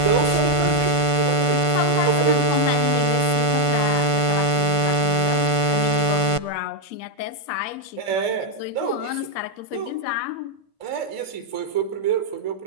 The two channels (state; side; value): late; right; 1.5 ms